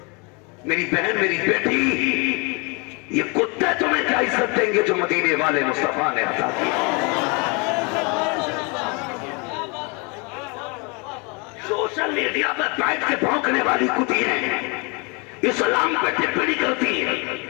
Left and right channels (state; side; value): quieter; right; 31.2 dB